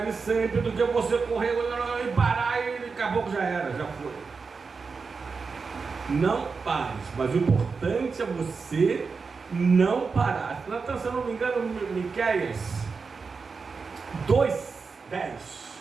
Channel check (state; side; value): quieter; left; 4.9 dB